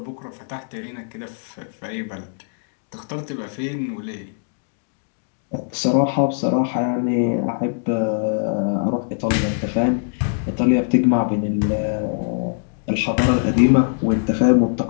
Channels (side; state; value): right; silent; digital silence